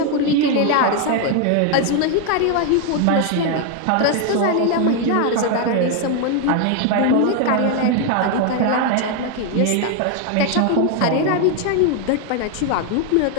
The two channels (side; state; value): both; different; correlation 0.01